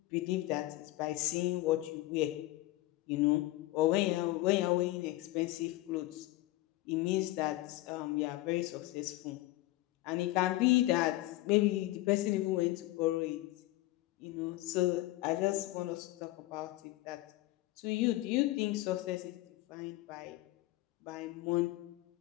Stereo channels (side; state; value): right; quieter; 17.8 dB